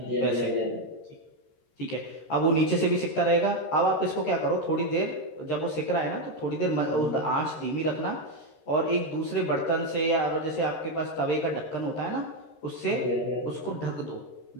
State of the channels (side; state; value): right; late; 13 ms